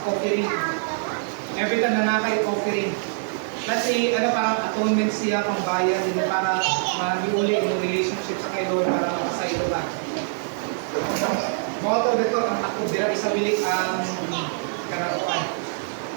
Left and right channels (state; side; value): silent; left; digital silence